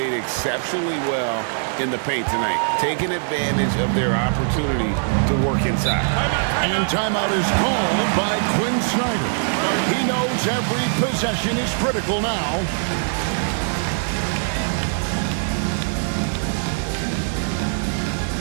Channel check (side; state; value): left; silent; digital silence